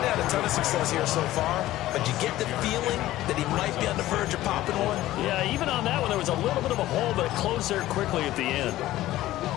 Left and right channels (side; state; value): right; quieter; 15.4 dB